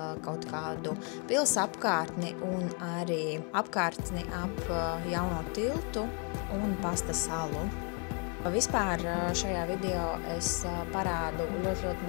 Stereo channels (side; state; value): right; quieter; 37.4 dB